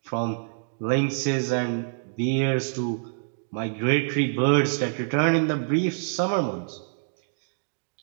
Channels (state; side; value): silent; left; digital silence